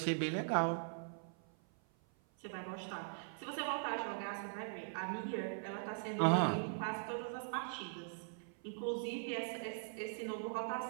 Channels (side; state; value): left; silent; 50 dB below the other